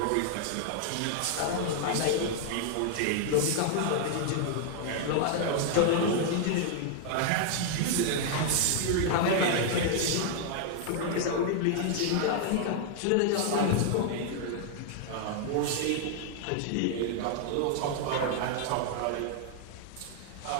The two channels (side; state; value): both; different; correlation 0.00